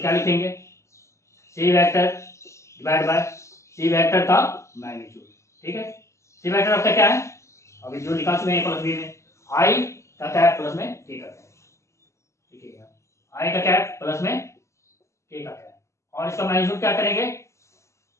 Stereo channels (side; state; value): right; late; 0.14 ms